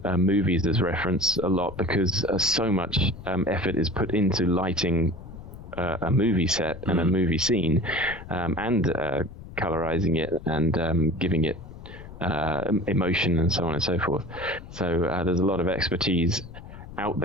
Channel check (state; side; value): noise; left; rumble, 14 dB below the sound